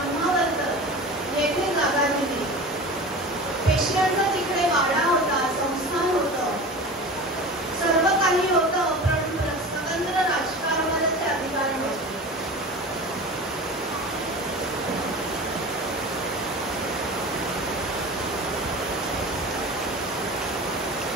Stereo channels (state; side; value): normal; both; correlation 0.34